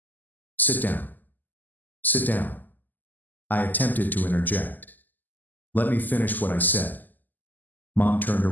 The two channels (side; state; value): right; late; 0.085 ms